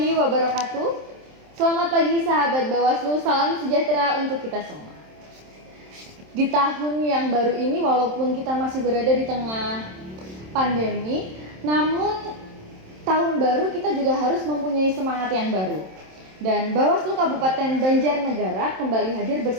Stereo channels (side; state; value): left; late; 27 ms